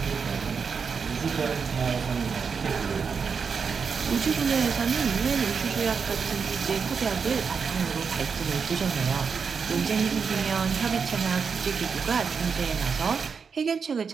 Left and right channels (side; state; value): left; quieter; 5.8 dB